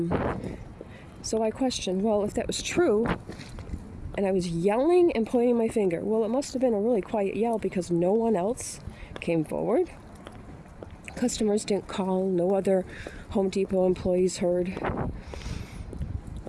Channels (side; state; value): both; identical; correlation 1.00